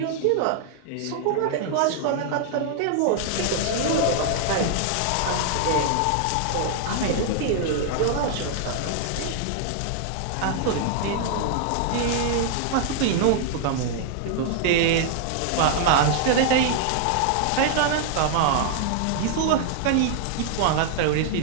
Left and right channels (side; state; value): both; different; correlation 0.00